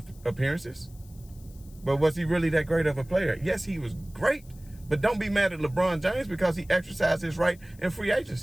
appearances. But was he really that great of a player? Yes, he was great. But don't be mad at LeBron James because he exercised his right in free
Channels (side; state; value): left; noise; hiss, 26 dB below the sound